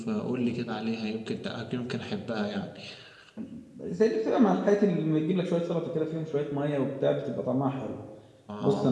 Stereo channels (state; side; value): identical; both; correlation 1.00